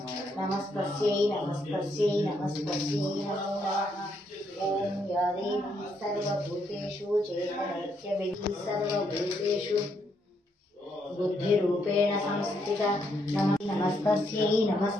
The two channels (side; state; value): both; normal; correlation 0.75